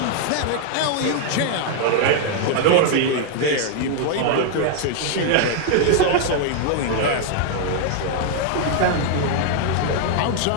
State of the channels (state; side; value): different; both; correlation 0.00